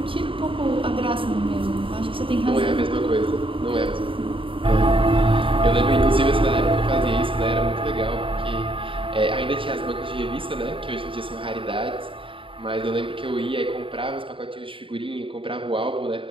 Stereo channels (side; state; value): left; late; 0.25 ms